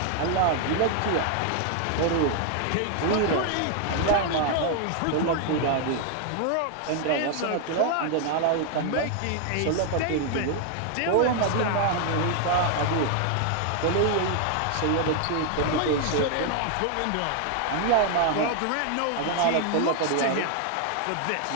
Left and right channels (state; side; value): different; both; correlation 0.00